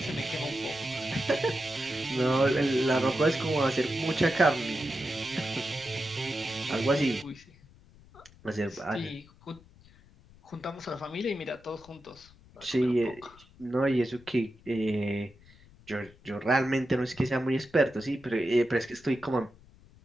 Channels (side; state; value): left; noise; rumble, 25 dB below the sound